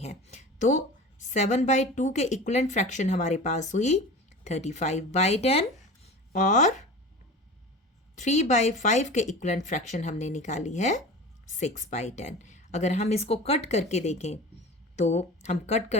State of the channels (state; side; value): normal; both; correlation 0.35